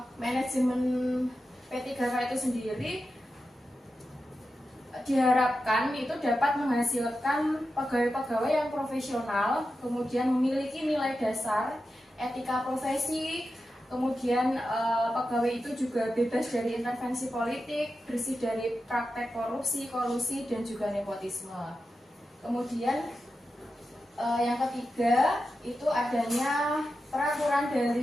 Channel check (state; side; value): normal; both; correlation 0.90